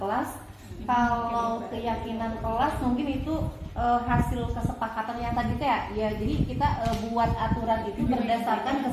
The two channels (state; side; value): identical; both; correlation 1.00